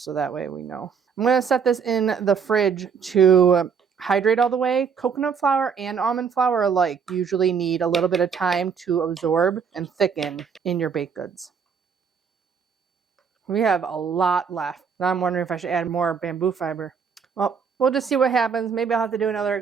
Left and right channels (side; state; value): left; quieter; 6.4 dB